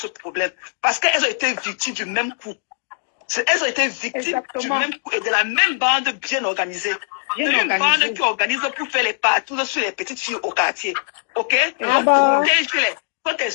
problème. Parce qu'elles ont été victimes du même coup. Elles ont été victimes du même coup et de la même bande bien organisée. C'est une bande qui organise pour faire les partout sur les petites filles au quartier. Ok? Donc, protège-les. Quand tes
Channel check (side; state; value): right; silent; digital silence